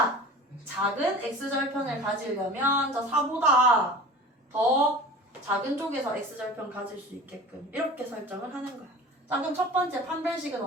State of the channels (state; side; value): normal; both; correlation 0.38